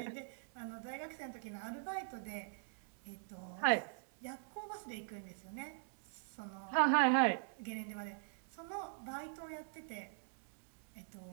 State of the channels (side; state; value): left; silent; digital silence